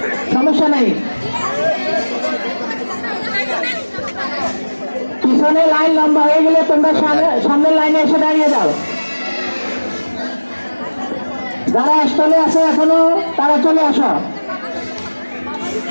সমস্যা নাই, পিছনে লাইন লম্বা হয়ে গেলে তোমরা সামনের লাইনে এসে দাঁড়িয়ে যাও। যারা স্টলে আছে এখনো তারা চলে আসো।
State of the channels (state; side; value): inverted; both; correlation -1.00